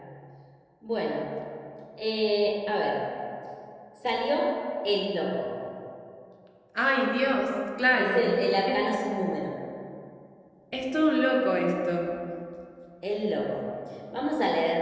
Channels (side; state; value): both; identical; correlation 1.00